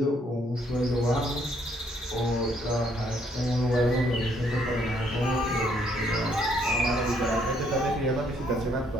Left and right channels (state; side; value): normal; both; correlation 0.68